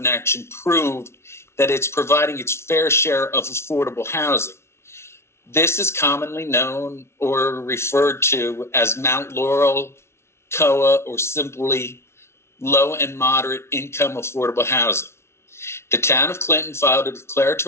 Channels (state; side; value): late; right; 0.13 ms